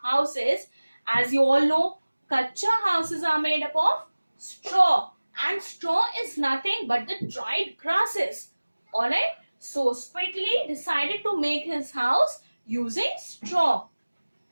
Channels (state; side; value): inverted; both; correlation -1.00